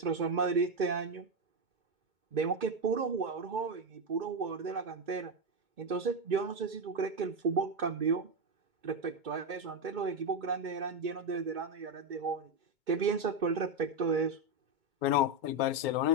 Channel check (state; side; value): late; left; 2.3 ms